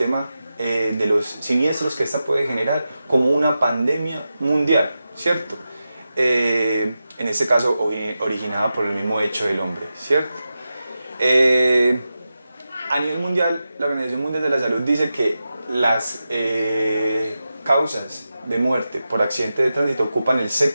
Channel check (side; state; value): both; inverted; correlation -0.91